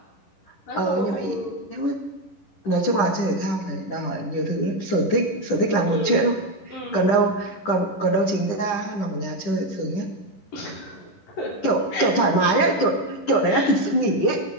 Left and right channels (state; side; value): late; right; 11 ms